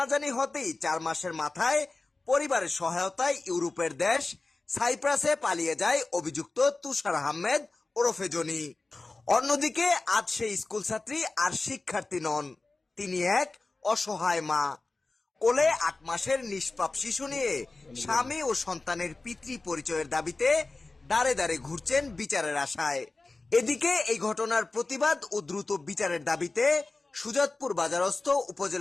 হতেই ৪ মাসের মাথায় পরিবারের সহায়তায় ইউরোপের দেশ সাইপ্রাসে পালিয়ে যায় অভিযুক্ত তুষার আহমেদ ওরফে জনি। অন্যদিকে আজ সেই স্কুল ছাত্রী আর শিক্ষার্থী নন, তিনি এক অসহায় মা। কোলে ৮ মাসের নিষ্পাপ শিশু নিয়ে স্বামী ও সন্তানের পিতৃ পরিচয়ের দাবিতে দাঁড়ে দাঁড়ে ঘুরছেন বিচারের আশায়। এদিকে এই ঘটনার প্রতিবাদ ও দ্রুত বিচারের দাবিতে সুজাতপুর বাজারস্থ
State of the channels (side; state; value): right; quieter; 3.4 dB